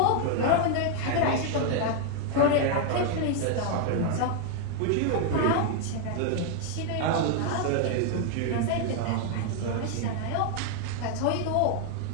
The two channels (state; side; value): different; both; correlation 0.00